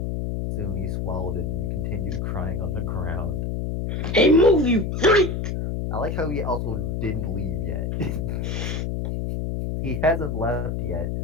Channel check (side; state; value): left; noise; hum, 1 dB below the sound